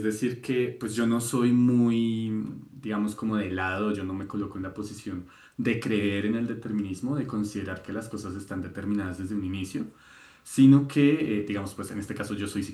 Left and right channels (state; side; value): identical; both; correlation 1.00